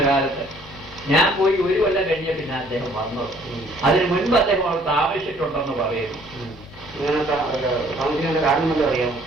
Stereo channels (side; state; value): both; normal; correlation 0.59